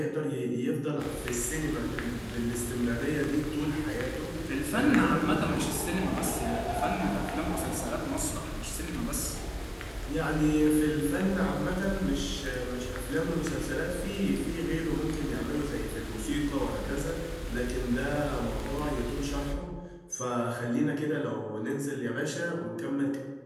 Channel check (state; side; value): identical; both; correlation 1.00